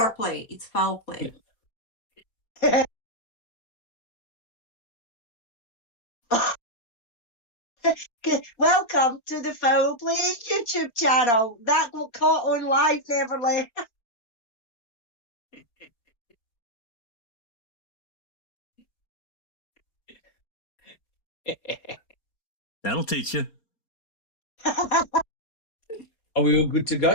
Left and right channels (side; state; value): right; late; 4.3 ms